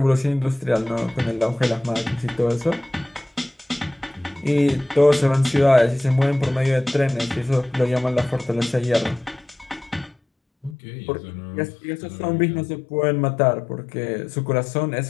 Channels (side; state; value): right; drops out; at 10.8 s